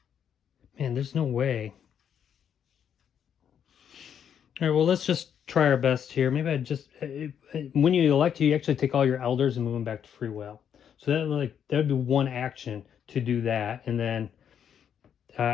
Man, there's no way. All right, well, let's just try our best here. Maybe I just when you elect, you actually take all your elders and move them back to free will. So that would be one action to do that, and then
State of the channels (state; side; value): quieter; right; 8.5 dB